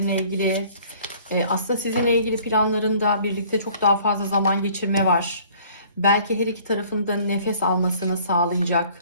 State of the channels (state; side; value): inverted; both; correlation -0.54